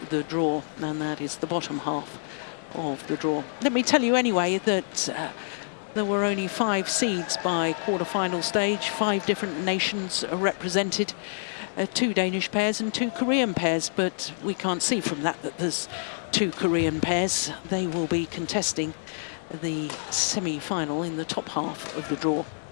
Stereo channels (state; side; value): silent; right; digital silence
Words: the draw, and that is the bottom half of the draw. Let me tell you anyway that there were only 5 seeds by quarterfinal stage. 5 different nations are represented, 2 Danish pairs and 2 Korean pairs, but we can't see from that that there's 2 Korean pairs. They will be contesting the semi-final in the top half of the draw.